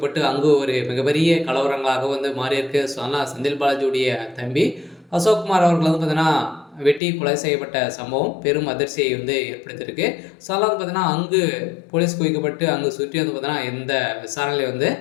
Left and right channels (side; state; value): right; drops out; at 7.0 s